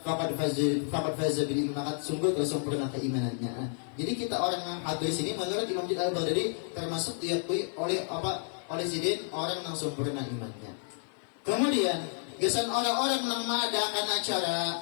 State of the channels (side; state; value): right; silent; 57 dB below the other